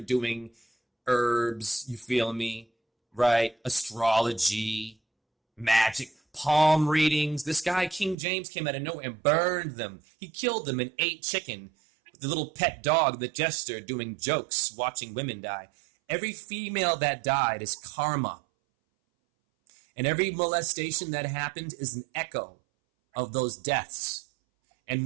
herbs, you feel me? Right? Astrology, magic, palm readings. This guy, King James, came out of nowhere and burned them. He killed them and ate chicken. The little pet dog, the jester, doing jokes, watching women die. Every female that died is karma. And every molestation that happened is an echo of those deaths.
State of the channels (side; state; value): left; drops out; at 8.2 s